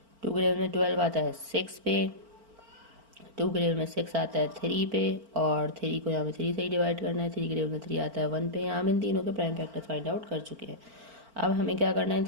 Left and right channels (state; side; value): late; left; 4.4 ms